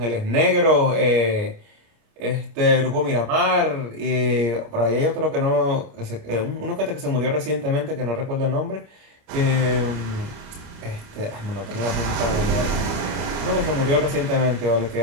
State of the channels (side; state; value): left; late; 29 ms